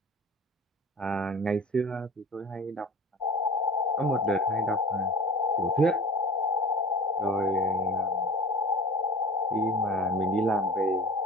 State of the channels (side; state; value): both; normal; correlation 0.38